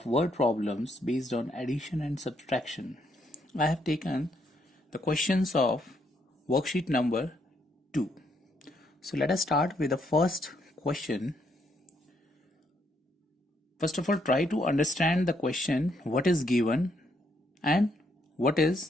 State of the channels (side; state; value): both; normal; correlation 0.74